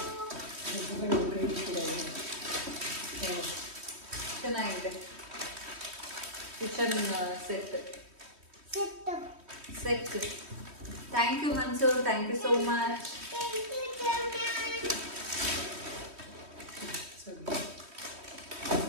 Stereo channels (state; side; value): late; left; 3.1 ms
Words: ಚೆನ್ನಾಗಿದೆ kitchen set. Thank you Mansoor, thank you so much.